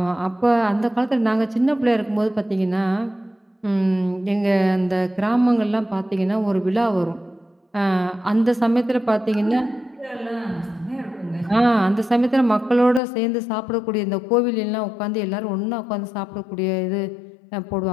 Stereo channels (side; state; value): right; drops out; at 13.0 s